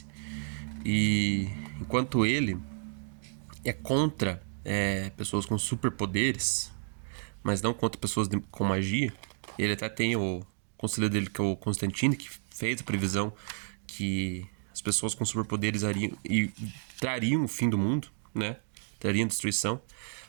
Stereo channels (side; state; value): left; silent; digital silence